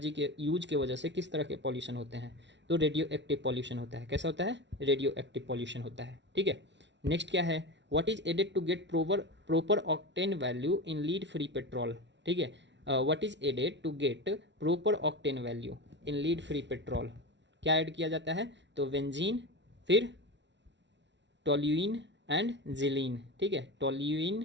के यूज के वजह से किस तरह के पॉल्यूशन होते हैं, तो रेडियो एक्टिव पॉल्यूशन होता है, कैसा होता है, रेडियो एक्टिव पॉल्यूशन होता है, ठीक है। नेक्स्ट क्या है, what is added to get proper octane value in lead free petrol, ठीक है, what is added to get proper octane value in lead free petrol, क्या ऐड किया जाता है, तो बेंजीन, फिर टोल्यूइन एंड जिलीन, ठीक है,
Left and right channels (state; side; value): late; left; 0.52 ms